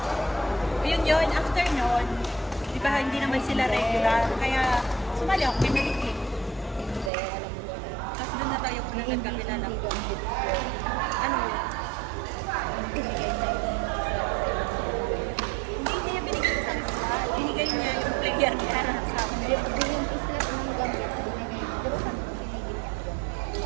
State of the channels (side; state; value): left; drops out; at 7.1 s